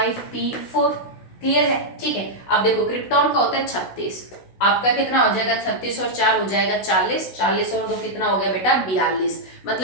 Clear है, ठीक है। अब देखो क्रिप्टॉन का होता है 36, आपका कितना हो जाएगा 36 और 4 हो जाएगा 40, 40 और 2 कितना हो गया बेटा 42।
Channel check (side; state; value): right; late; 16 ms